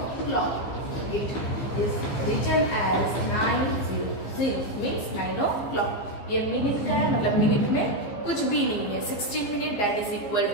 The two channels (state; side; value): late; right; 15 ms